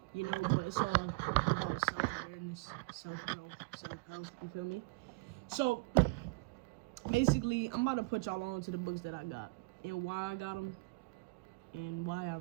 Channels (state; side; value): quieter; left; 26.9 dB